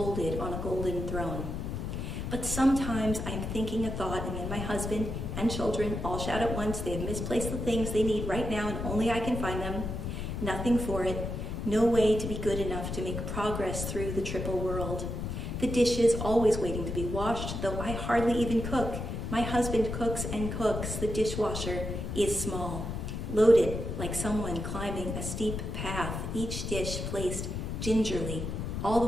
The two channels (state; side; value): noise; left; rumble, 4 dB below the sound